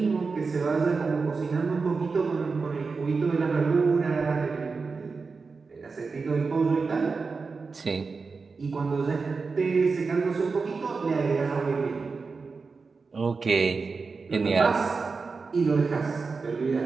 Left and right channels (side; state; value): left; quieter; 4.5 dB